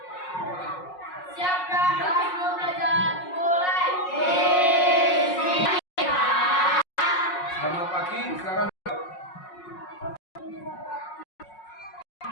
Siap dah, kelas mau belajar mulai. Selamat pagi, silakan.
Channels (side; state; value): right; late; 5.5 ms